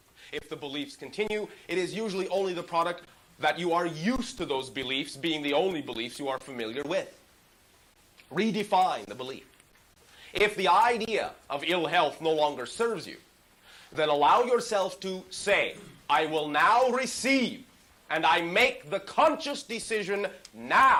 If the beliefs continue, it is usually only the product that you are used to those beliefs being the only beliefs you are familiar with. Redefine the belief. If the idea of ill health no longer serves you, then allow yourself to say, I will now receive, and I make the conscious decision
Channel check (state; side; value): identical; both; correlation 1.00